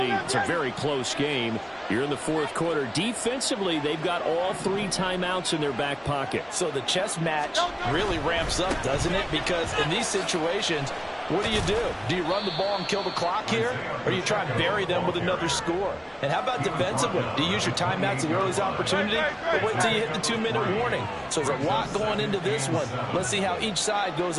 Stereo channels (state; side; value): identical; both; correlation 1.00